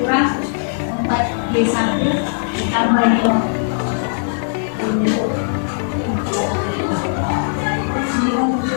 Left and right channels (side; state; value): right; silent; digital silence